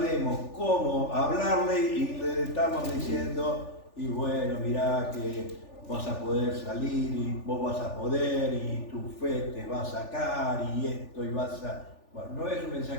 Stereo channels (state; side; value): late; right; 3.4 ms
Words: cómo hablarle y le estamos diciendo, y bueno, mirá que vas a poder salir y vos vas a poder y tu fe te va a sacar y esto y vas a... Bueno, no es un